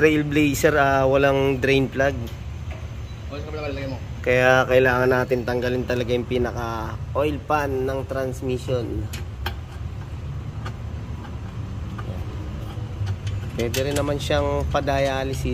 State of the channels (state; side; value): identical; both; correlation 1.00